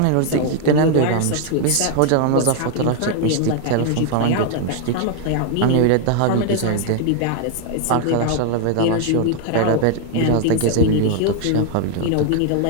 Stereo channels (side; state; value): both; different; correlation 0.00